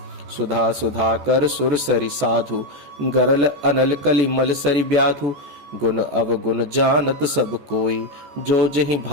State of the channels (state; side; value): late; left; 14 ms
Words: सुधा सुधा कर सुर सरि साधु, गरल अनल कलि मल सरि ब्याधु। गुण अवगुण जानत सब कोई, जो जहि